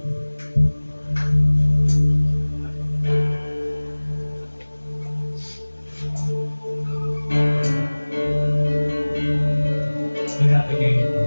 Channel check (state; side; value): inverted; both; correlation -1.00